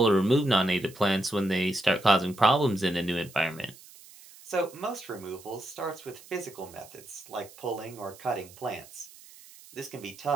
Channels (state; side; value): noise; right; hiss, 21 dB below the sound